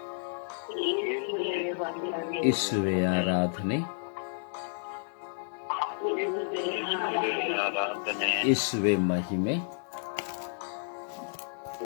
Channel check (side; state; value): right; silent; digital silence